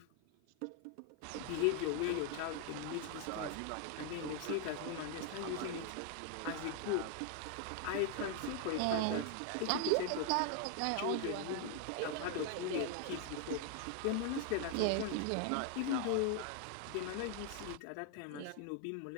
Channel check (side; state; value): both; different; correlation 0.00